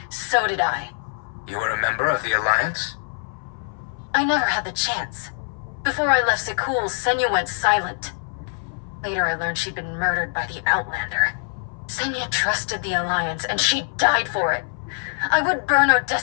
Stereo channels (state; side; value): silent; right; 60 dB below the other